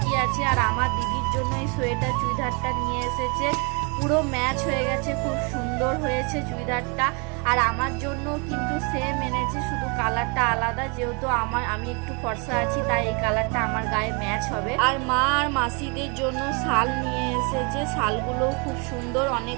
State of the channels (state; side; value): quieter; left; 33.2 dB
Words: আছে। আর আমার দিদির জন্য এই সোয়েটার চুড়িদারটা নিয়ে এসেছে, পুরো ম্যাচ হয়ে গেছে, খুব সুন্দর হয়েছে চুড়িদারটা। আর আমার জন্য কিন্তু সেম এনেছে, শুধু কালারটা আলাদা। যেহেতু আমি একটু ফর্সা আছি, তাই এই কালারটা আমার গায়ে ম্যাচ হবে। আর মা আর মাসিদের জন্য শাল নিয়ে এসেছে, শালগুলোও খুব সুন্দর,